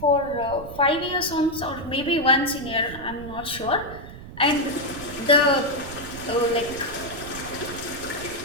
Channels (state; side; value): noise; right; rumble, 13 dB below the sound